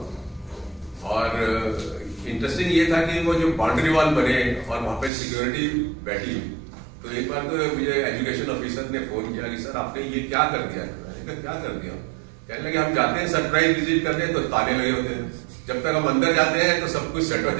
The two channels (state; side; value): drops out; left; at 5.1 s